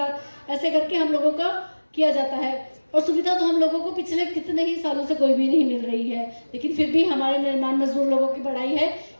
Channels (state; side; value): inverted; both; correlation -1.00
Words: ऐसे करके हम लोगों का किया जाता है। और सुविधा तो हम लोगों को पिछले कितने ही सालों से कोई भी नहीं मिल रही है, लेकिन फिर भी हमारे निर्माण मजदूर लोगों की बड़ाई है